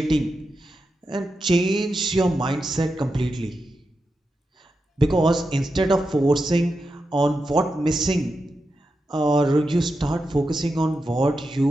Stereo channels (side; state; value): both; normal; correlation 0.88